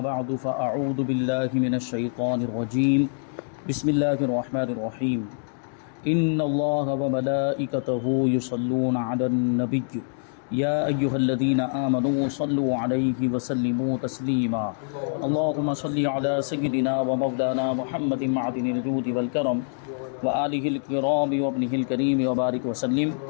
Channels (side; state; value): right; silent; digital silence